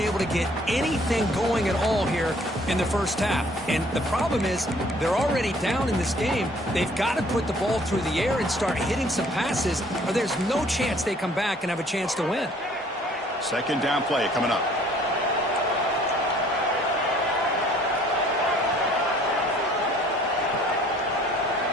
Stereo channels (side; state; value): both; normal; correlation 0.57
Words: to get anything going at all here in the first half. And the problem is they're already down in this game. They've got to put the ball through the air and start hitting some passes, or there's no chance they come back and have a chance to win. Second down play coming up.